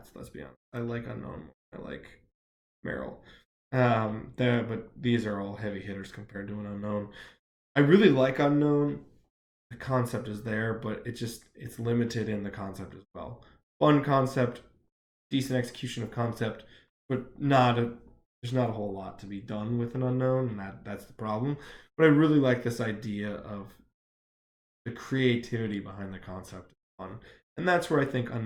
Let's be honest. I like unknown. I like Meryl. But these are all heavy hitters compared to an unknown. I really like unknown. The concept is there, but it's limited in the concept as well. Fun concept, decent execution of concept, but there's not a whole lot to be done with an unknown, and that's the problem. But I really like this idea of the creativity behind the concept. Fun, and that's where I think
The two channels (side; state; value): both; identical; correlation 1.00